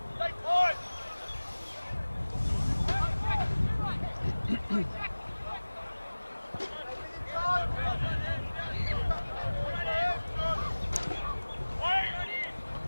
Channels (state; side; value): inverted; both; correlation -1.00